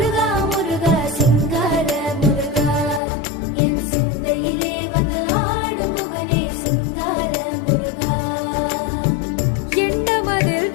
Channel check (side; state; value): right; drops out; at 3.0 s